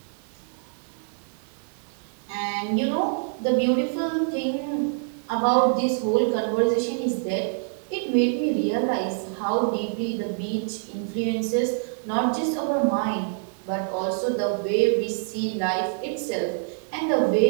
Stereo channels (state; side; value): silent; left; 61 dB below the other